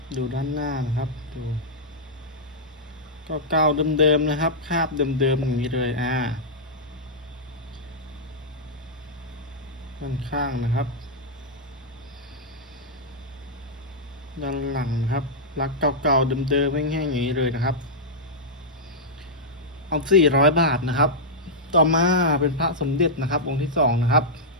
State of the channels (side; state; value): both; normal; correlation -0.09